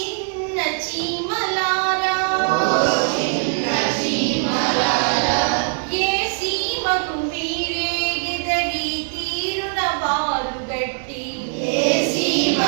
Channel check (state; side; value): silent; left; 57 dB below the other